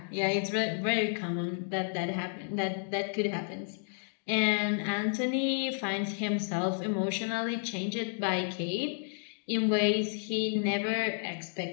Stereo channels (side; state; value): right; silent; digital silence